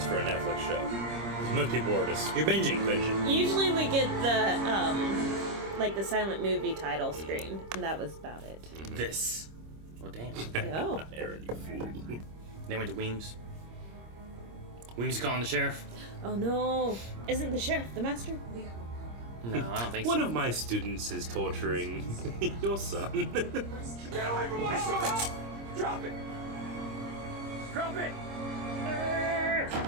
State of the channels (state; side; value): late; left; 26 ms